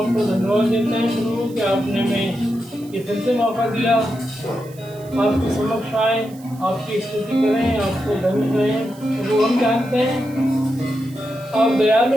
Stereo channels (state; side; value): noise; right; hiss, 24 dB below the sound